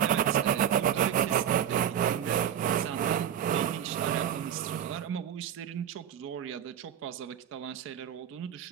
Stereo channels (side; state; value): left; quieter; 9.5 dB